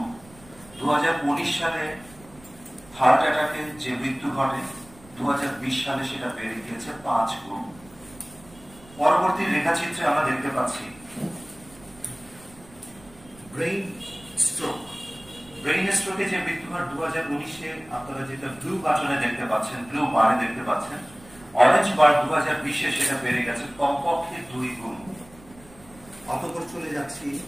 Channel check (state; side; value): noise; right; rumble, 23 dB below the sound